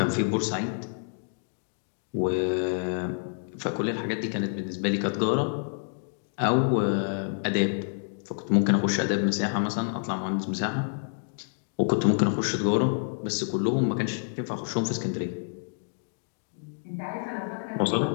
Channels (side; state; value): right; silent; digital silence